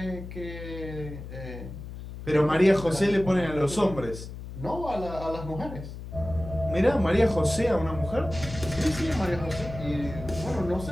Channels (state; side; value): noise; left; hum, 11 dB below the sound